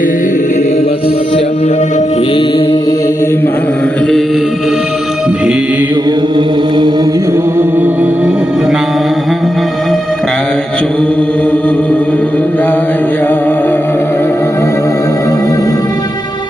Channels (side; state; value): both; normal; correlation 0.87